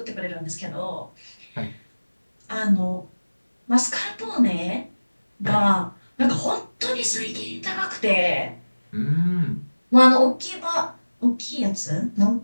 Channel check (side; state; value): both; inverted; correlation -1.00